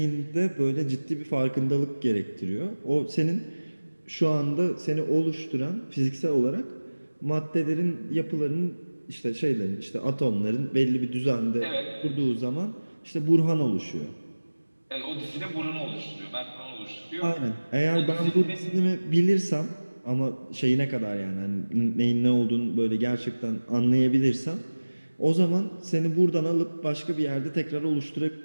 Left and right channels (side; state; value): both; inverted; correlation -1.00